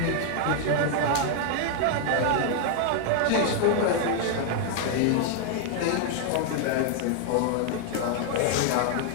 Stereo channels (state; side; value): different; both; correlation 0.00